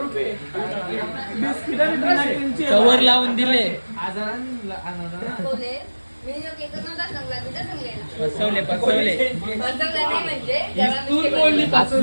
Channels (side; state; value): both; inverted; correlation -1.00